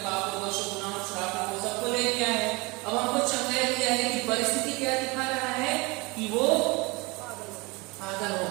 पापों दोषों गुनाहों श्रापों को सबको ले लिया है। अब हमको चंगाई दिया है कि परिस्थिति क्या दिखा रहा है कि वो पागल हो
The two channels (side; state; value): left; quieter; 26.0 dB